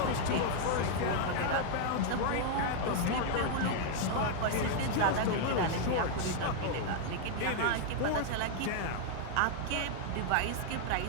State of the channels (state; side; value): different; both; correlation 0.00